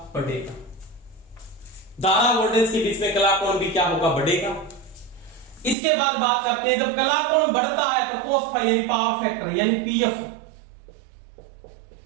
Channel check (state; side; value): drops out; left; at 5.8 s